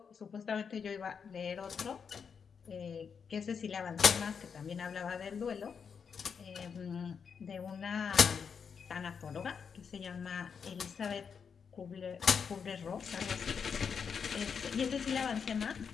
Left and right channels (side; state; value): right; quieter; 6.4 dB